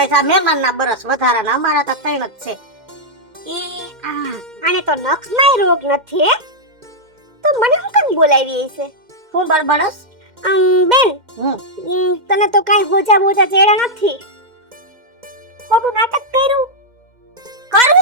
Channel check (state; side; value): late; left; 2.1 ms